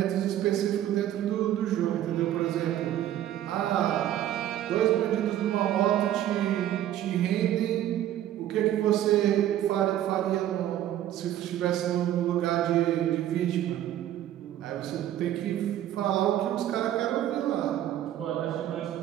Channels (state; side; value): quieter; left; 12.1 dB